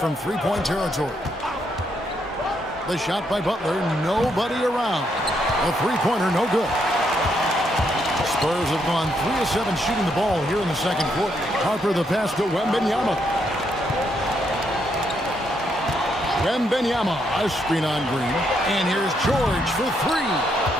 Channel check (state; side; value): normal; both; correlation 0.76